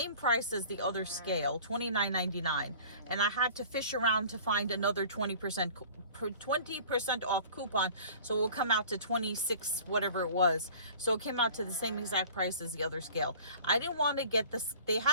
price as the other scale, $29.99, and I had to fish around to find another 20% off coupon, so it will come out to 26 whatever it was. So it came out to the same exact price as the other scale. I didn't want to get this. They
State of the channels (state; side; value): inverted; both; correlation -0.46